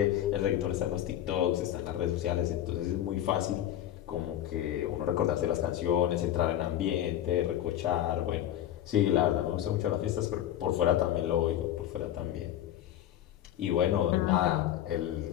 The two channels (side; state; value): right; quieter; 11.8 dB